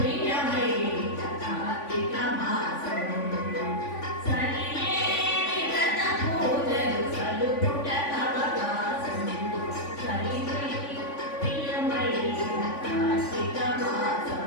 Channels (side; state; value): right; late; 3.5 ms